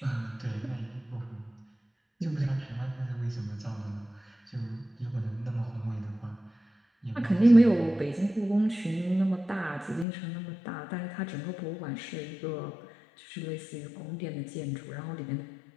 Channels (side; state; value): right; drops out; at 10.1 s